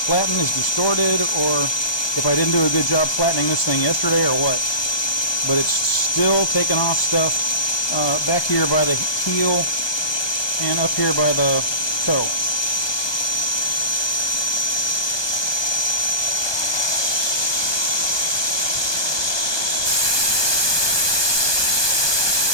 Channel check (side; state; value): right; late; 1.2 ms